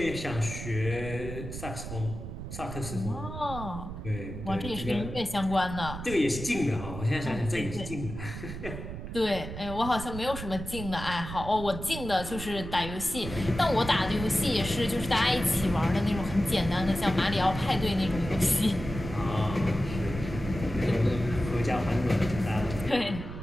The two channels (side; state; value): right; noise; rumble, 8 dB below the sound